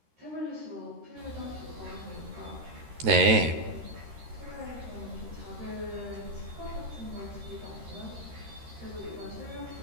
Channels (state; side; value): late; left; 13 ms